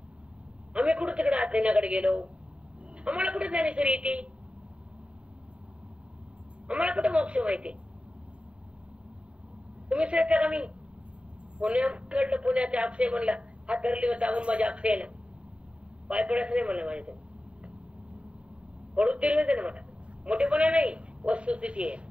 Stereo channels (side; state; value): left; late; 0.058 ms